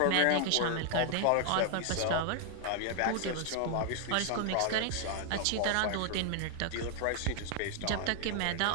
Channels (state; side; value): different; both; correlation 0.00